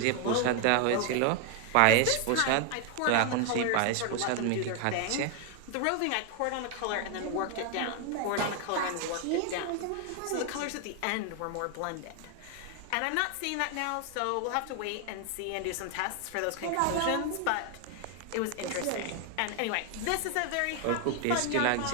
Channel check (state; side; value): different; both; correlation 0.00